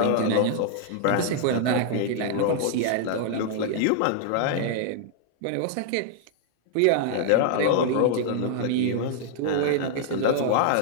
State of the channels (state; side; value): different; both; correlation 0.00